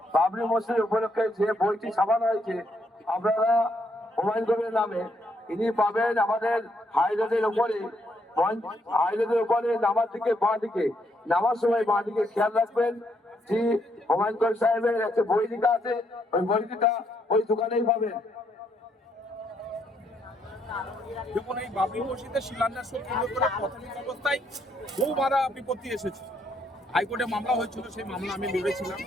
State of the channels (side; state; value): both; normal; correlation 0.74